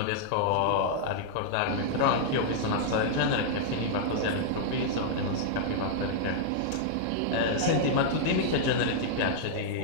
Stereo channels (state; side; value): different; both; correlation -0.01